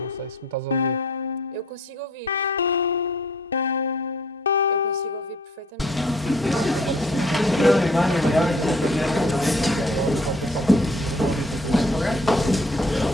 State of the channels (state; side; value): normal; both; correlation 0.57